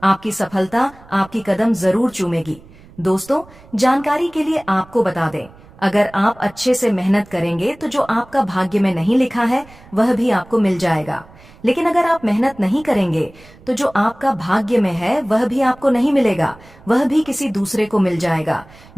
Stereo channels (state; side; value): noise; right; rumble, 24 dB below the sound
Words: आपकी सफलता आपकी कदम जरूर चूमेगी। दोस्तों जानकारी के लिए आपको बता दें, अगर आप अच्छे से मेहनत करेंगे तो जो आपका भाग्य में नहीं लिखा है वह भी आपको मिल जाएगा। लेकिन अगर आप मेहनत नहीं करेंगे तो जो आपका भाग्य में है वह भी आपको नहीं मिलेगा, वह भी किसी दूसरे को मिल जाएगा।